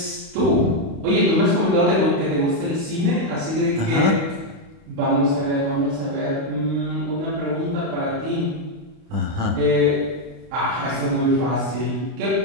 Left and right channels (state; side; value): late; left; 29 ms